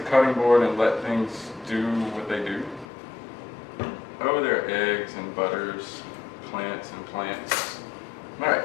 cutting board and let things do what they do. Oh, there are eggs and butters, plants and plants. All right,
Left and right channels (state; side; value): drops out; right; at 2.9 s